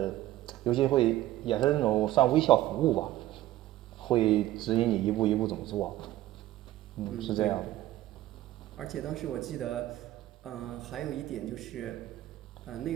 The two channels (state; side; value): quieter; left; 14.9 dB